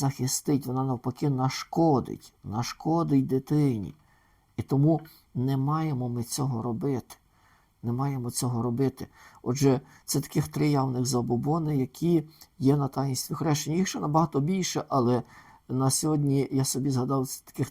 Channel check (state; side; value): identical; both; correlation 1.00